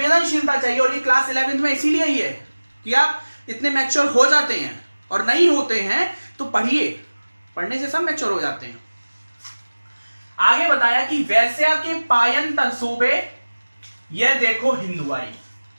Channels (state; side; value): inverted; both; correlation -1.00